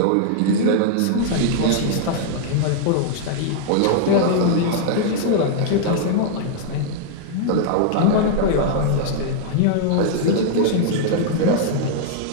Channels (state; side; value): different; both; correlation -0.01